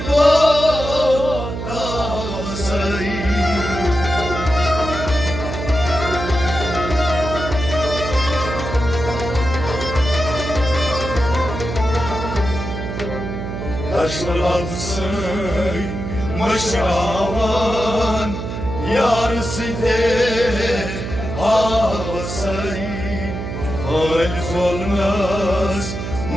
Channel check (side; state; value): right; noise; hum, 6 dB below the sound